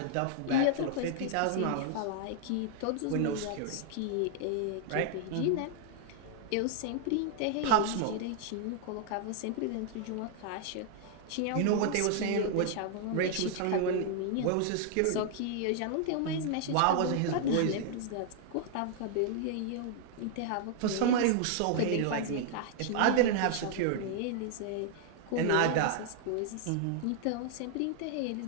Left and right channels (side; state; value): both; different; correlation 0.00